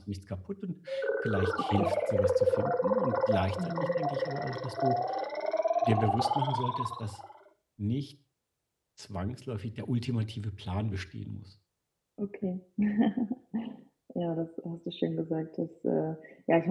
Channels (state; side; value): identical; both; correlation 1.00